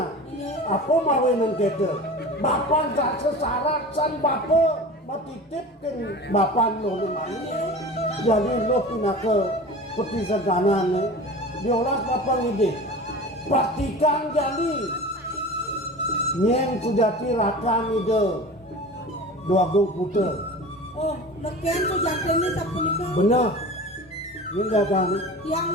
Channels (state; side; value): normal; both; correlation 0.36